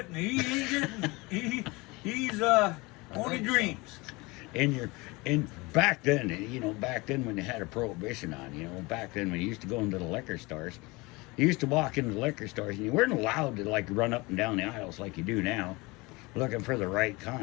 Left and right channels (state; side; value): quieter; right; 24.3 dB